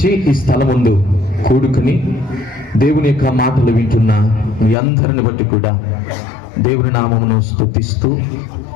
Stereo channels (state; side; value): drops out; right; at 4.8 s